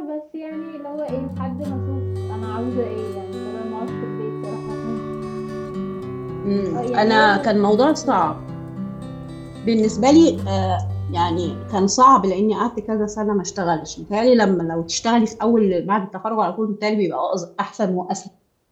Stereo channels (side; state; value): both; identical; correlation 1.00